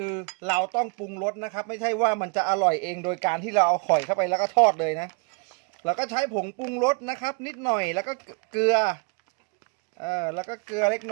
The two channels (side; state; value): left; quieter; 35.1 dB